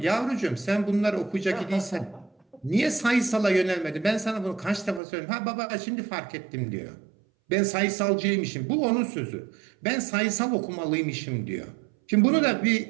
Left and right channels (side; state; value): left; drops out; at 5.0 s